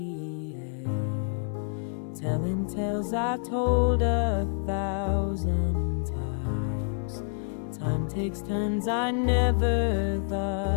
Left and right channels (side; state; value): right; silent; digital silence